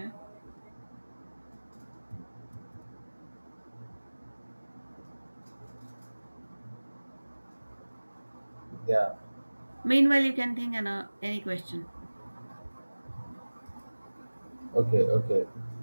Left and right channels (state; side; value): inverted; both; correlation -1.00